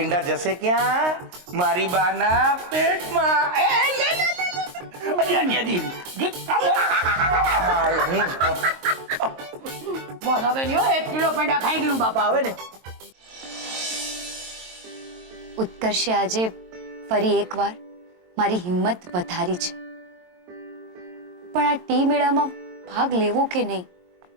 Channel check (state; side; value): late; left; 22 ms